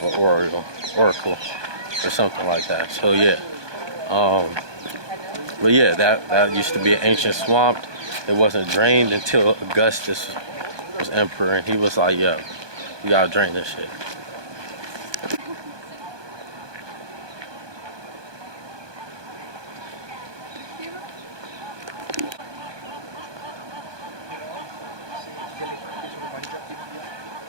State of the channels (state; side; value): late; left; 1.2 ms